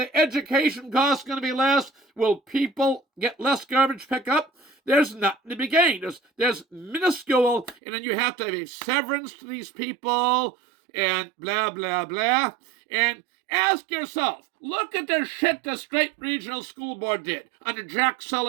education cost going to be less? Will people get less garbage pickup? There's nothing to be gained. There's minuscule, and then you have to have a severance to these people and blah, blah, blah. And ask yourself, look at the shit the Strait Regional School Board did under Jack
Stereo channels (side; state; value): left; drops out; at 7.8 s